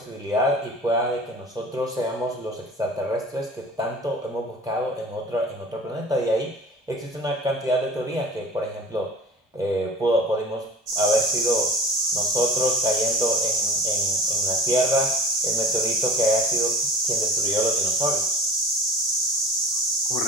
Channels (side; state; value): both; normal; correlation 0.40